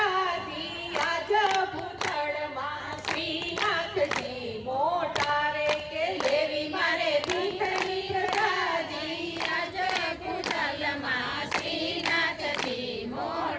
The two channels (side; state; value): both; identical; correlation 1.00